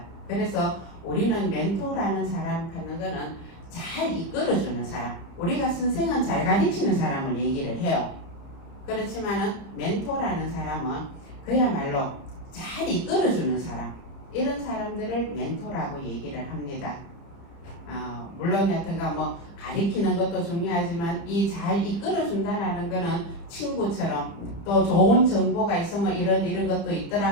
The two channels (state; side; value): late; right; 30 ms